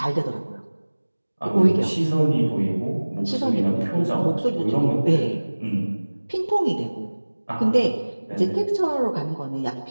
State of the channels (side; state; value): both; inverted; correlation -1.00